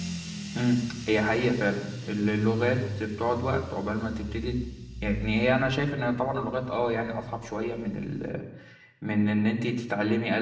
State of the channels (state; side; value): identical; both; correlation 1.00